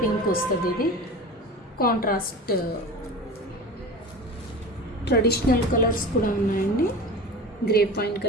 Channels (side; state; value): both; normal; correlation 0.34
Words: పింక్ వస్తుంది. ఇది కాంట్రాస్ట్ ట్రెడిషనల్ కలర్స్ కూడా ఉన్నాయండి. Grape wine